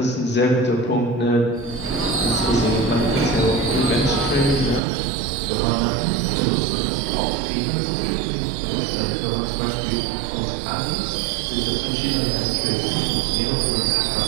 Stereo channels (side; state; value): left; drops out; at 4.8 s